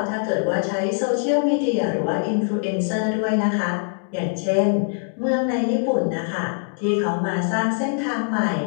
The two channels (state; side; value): silent; right; 64 dB below the other